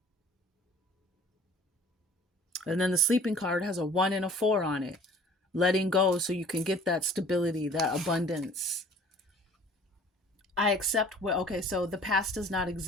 And then the sleeping card has a 1 and a 4 on it. Letting go so you can get that stability, that abundance. I accept what, okay, so the past does not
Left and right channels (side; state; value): both; normal; correlation 0.49